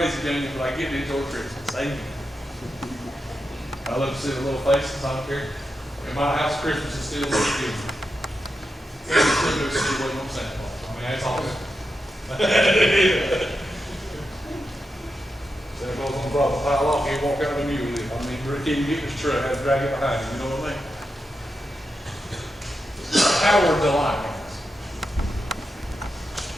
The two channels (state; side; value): normal; both; correlation 0.88